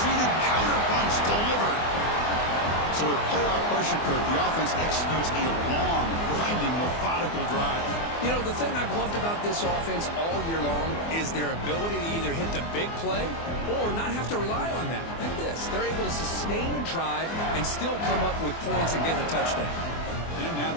counterpunch delivered. So with playoff pressure, Kirk, the offense executes a long, grinding, methodical drive. You know, the thing I've loved about this offense all year long is their ability to either hit the big play or not have to rely on that. Like this. They're able to sustain a drive and still come up with points and get a touchdown. And now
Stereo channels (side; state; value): right; late; 24 ms